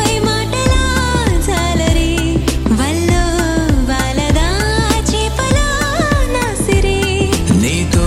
మాటలా జాలరి వల్లో వాలదా చేపలా నాసిరి నీతో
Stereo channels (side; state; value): both; identical; correlation 1.00